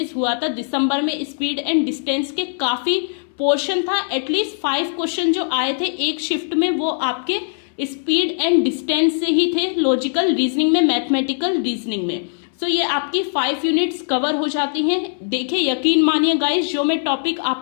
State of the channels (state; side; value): silent; right; 66 dB below the other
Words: हुआ था। दिसंबर में स्पीड एंड डिस्टेंस के काफी पोर्शन था। एटलीस्ट 5 क्वेश्चन जो आए थे एक शिफ्ट में वो आपके स्पीड एंड डिस्टेंस से ही थे, लॉजिकल रीजनिंग में, मैथमेटिकल रीजनिंग में। सो ये आपकी 5 यूनिट्स कवर हो जाती हैं। देखिए यकीन मानिए गाइस, जो मैं टॉपिक